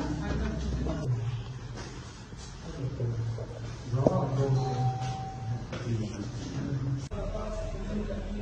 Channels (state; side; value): identical; both; correlation 1.00